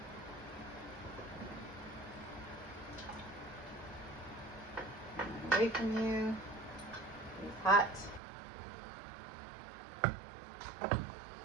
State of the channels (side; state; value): left; drops out; at 8.2 s